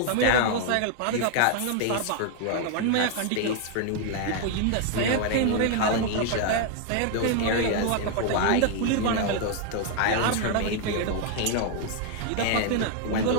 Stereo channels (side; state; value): both; different; correlation 0.00